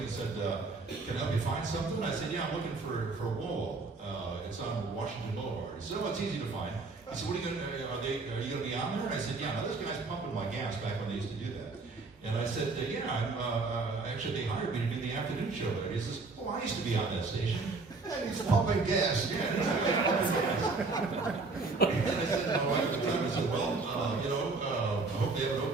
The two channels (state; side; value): quieter; left; 3.8 dB